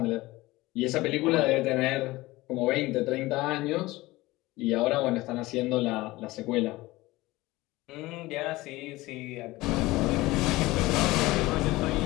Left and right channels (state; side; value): quieter; right; 19.5 dB